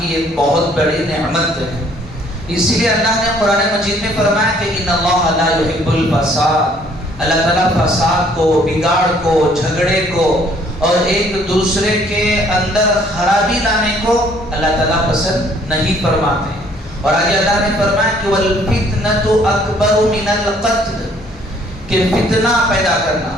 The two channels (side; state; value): both; normal; correlation 0.61